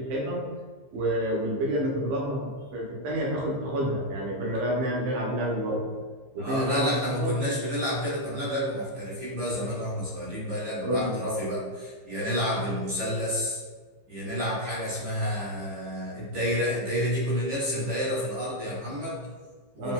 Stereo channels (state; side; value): late; left; 15 ms